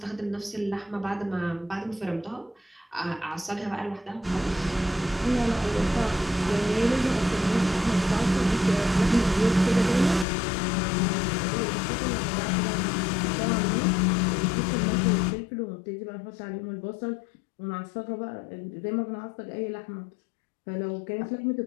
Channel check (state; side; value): drops out; right; at 10.2 s